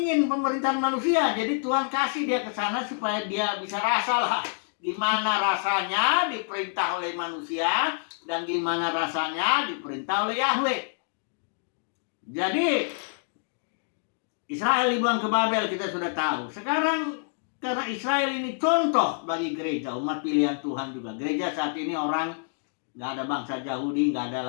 pemerintahan manusia, jadi Tuhan kasih dia ke sana supaya dia bisa rasalah gimana rasanya diperintah oleh manusia dan gimana rasanya diperintah oleh Yahweh. Jadi Israel dibuang ke Babel kita sudah tahu. Sekarang karena Israel ini contoh bagi gereja, umat pilihan Tuhan juga. Gereja saat ini orang nggak ada bangsa Yahudi, nggak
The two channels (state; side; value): silent; right; digital silence